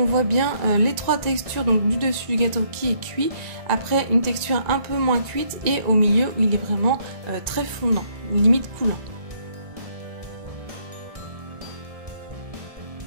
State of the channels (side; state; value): left; late; 1.9 ms